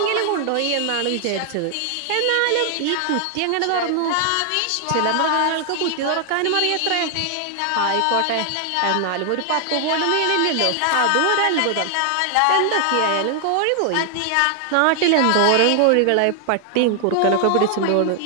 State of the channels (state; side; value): different; both; correlation 0.00